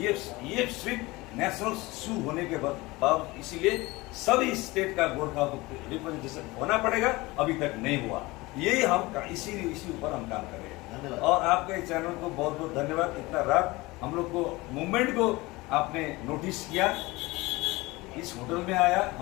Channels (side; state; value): right; quieter; 21.6 dB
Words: सिर्फ नेशनल इशू होने के बाद, इसीलिए सभी स्टेट का गोरखा को रिप्रेजेंटेशन होना पड़ेगा। अभी तक नहीं हुआ, यही हम इसी ऊपर हम काम कर रहे हैं। और आपके चैनल को बहुत बहुत धन्यवाद। इतना रात हम लोग को मूवमेंट को आपने नोटिस किया, इस होटल में आया,